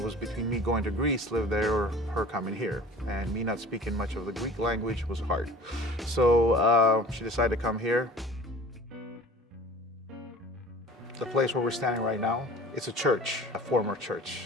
was between me going to Greece, live there, or her coming here. And me not speaking much of the Greek language was hard. So she decided to come here. The place where we're standing right now, it's a church, a former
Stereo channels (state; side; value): normal; both; correlation 0.43